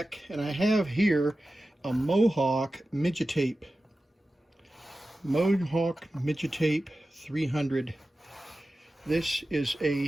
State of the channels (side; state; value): both; normal; correlation 0.94